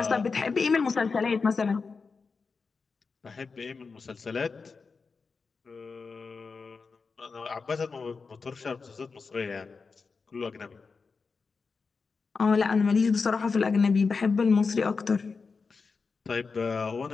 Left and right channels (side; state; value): right; quieter; 4.8 dB